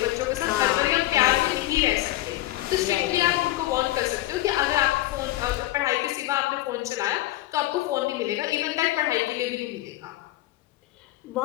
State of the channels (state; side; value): quieter; right; 16.3 dB